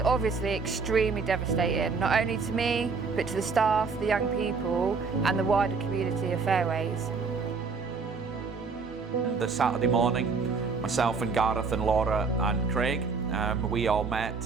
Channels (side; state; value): left; quieter; 4.8 dB